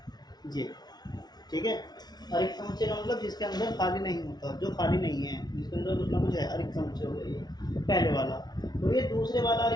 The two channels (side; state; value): right; late; 0.19 ms